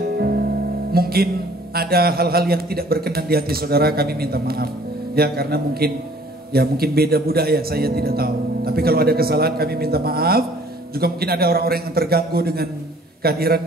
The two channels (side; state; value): both; normal; correlation 0.55